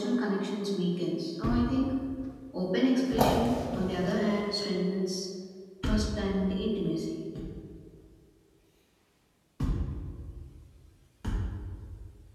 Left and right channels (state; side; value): identical; both; correlation 1.00